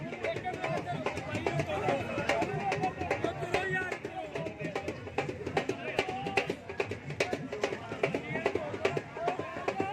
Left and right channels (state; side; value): identical; both; correlation 1.00